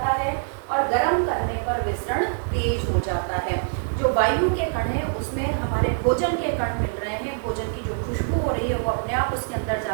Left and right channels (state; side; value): silent; left; digital silence